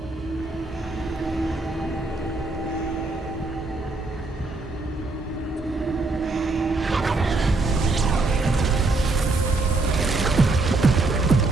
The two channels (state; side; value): quieter; left; 3.3 dB